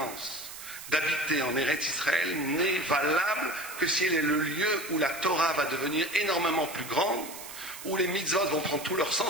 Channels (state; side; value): noise; right; hiss, 12 dB below the sound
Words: d'habiter en Eretz Israël n'est valable que si elle est le lieu où la Torah va devenir énormément plus grande, où les mitzvot vont prendre tout leur